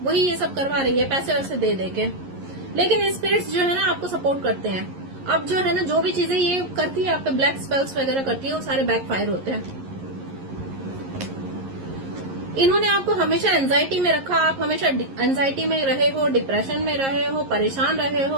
वही ये सब करवा रही है पैसे वैसे दे दे के। लेकिन स्पिरिट्स जो है ना आपको सपोर्ट करते हैं। अब जो है ना जो भी चीजें ये करती है आप पे, ब्लैक स्पेल्स वगैरह करती है, वो सारे बैकफायर होते हैं। इन्होंने आपको हमेशा एंजाइटी में रखा, आप हमेशा एंजाइटी में रहे हो, डिप्रेशन में रहे हो, परेशान रहे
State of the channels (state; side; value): late; left; 11 ms